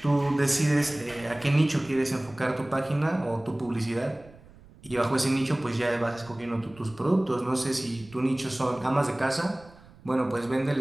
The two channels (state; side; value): noise; right; rumble, 23 dB below the sound